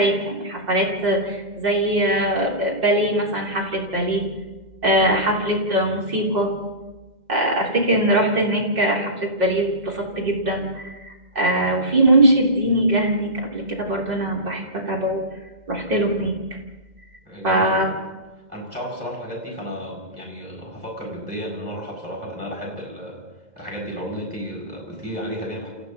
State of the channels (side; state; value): left; late; 2.1 ms